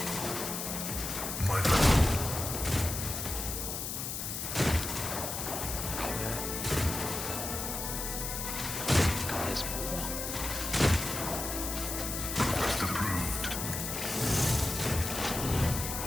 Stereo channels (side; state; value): left; noise; hiss, 4 dB below the sound